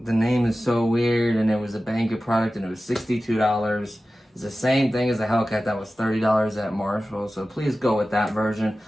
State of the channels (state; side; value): normal; both; correlation 0.95